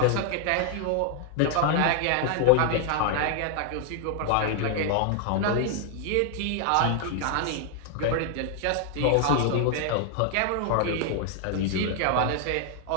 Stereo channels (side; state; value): both; different; correlation 0.00